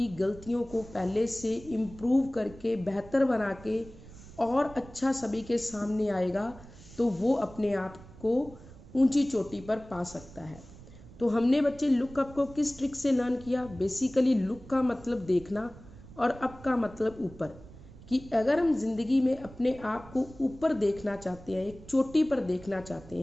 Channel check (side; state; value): right; noise; rumble, 19 dB below the sound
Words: गलतियों को पहले से इम्प्रूव करके बेहतर बना के और अच्छा सभी के सामने आएगा तो वो अपने आप को ऊंची चोटी पर पा सकता है। तो हमने बच्चे लुक अप को किस ट्रिक से लर्न किया, बेसिकली लुक का मतलब देखना और अप का मतलब ऊपर। कि अगर हम जिंदगी में अपने आप को ऊपर देखना चाहते हैं, एक चोटी पर देखना चाहते